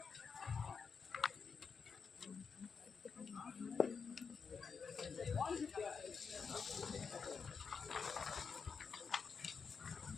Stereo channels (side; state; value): right; quieter; 5.7 dB